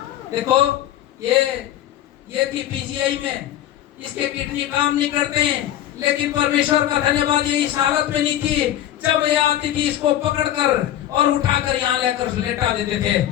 देखो ये थी पीजीआई में, इसके किडनी काम नहीं करते हैं, लेकिन परमेश्वर का धन्यवाद ये इस हालत में नहीं थी। जब ये आती थी इसको पकड़कर और उठाकर यहाँ लेकर लेटा देते थे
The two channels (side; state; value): right; quieter; 12.3 dB